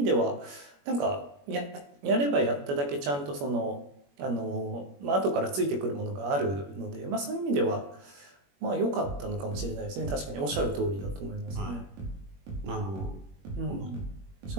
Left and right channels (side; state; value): left; late; 21 ms